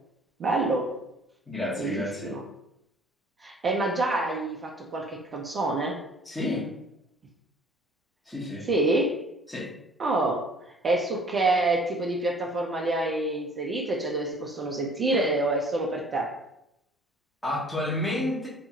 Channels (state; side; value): normal; both; correlation 0.52